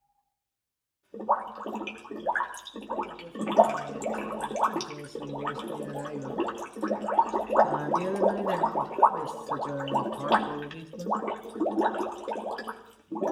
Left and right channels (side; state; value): both; identical; correlation 1.00